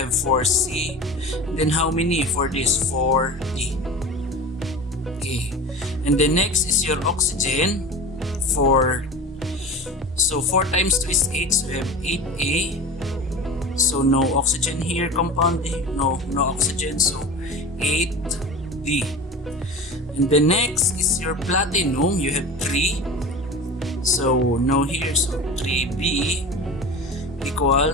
4C. And then how many for this? 4D. Okay. And then next is your oxygen. So 4 times 2 is 8, so you have 8A. So no oxygen here, compound A. No oxygen, so 8D. And the next is your platinum. You have 3. So no here, so 3B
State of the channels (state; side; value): normal; both; correlation 0.34